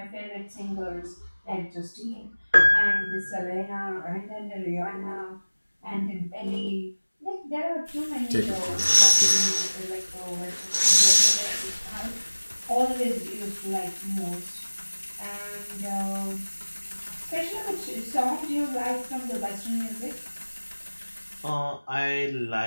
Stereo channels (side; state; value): both; inverted; correlation -1.00